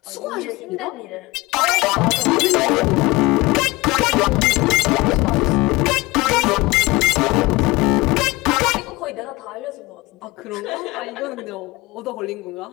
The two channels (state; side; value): quieter; right; 21.6 dB